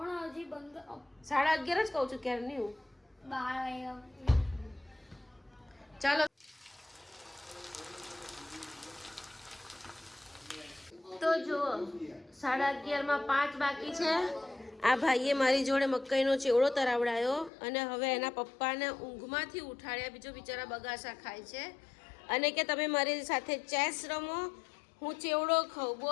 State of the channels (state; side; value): drops out; right; at 17.5 s